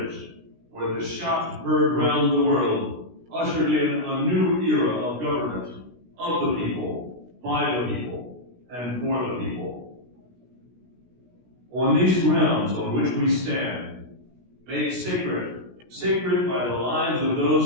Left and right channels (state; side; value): late; left; 16 ms